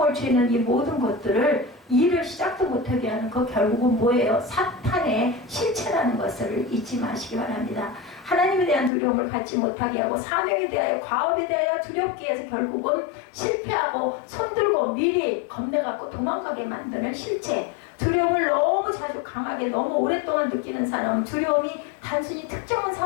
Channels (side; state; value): right; drops out; at 8.9 s